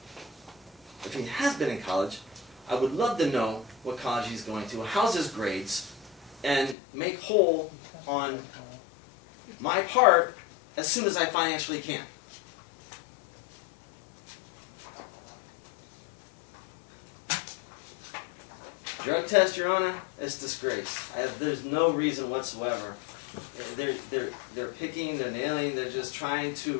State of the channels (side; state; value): right; drops out; at 6.8 s